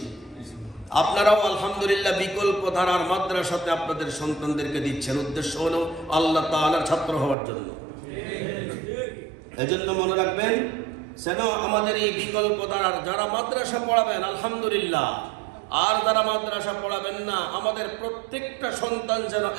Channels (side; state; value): left; drops out; at 7.4 s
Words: আপনারাও আলহামদুলিল্লাহ বিকল্প ধারার মাদ্রাসাতে আপনাদের সন্তানদেরকে দিচ্ছেন। উদ্দেশ্য হলো আল্লাহ তাআলার ছাত্র হওয়ার জন্য। এজন্য মনে রাখবেন, যেন আমাদের এই বিকল্প ধারার যারা মাদ্রাসা পড়াবেন আলহামদুলিল্লাহ, আর যারা মাদ্রাসা পড়াবেন না, আমাদের প্রত্যেকটা সন্তান যেন